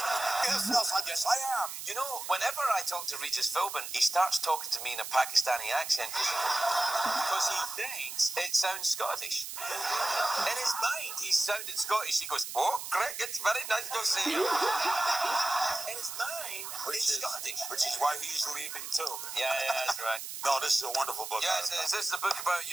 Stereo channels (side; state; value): right; noise; hiss, 8 dB below the sound